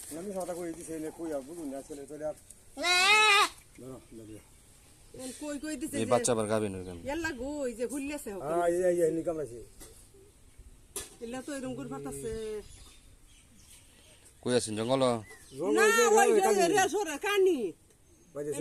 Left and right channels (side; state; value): both; identical; correlation 1.00